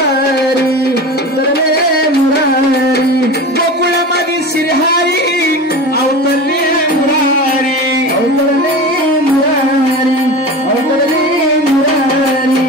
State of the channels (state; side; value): normal; both; correlation 0.31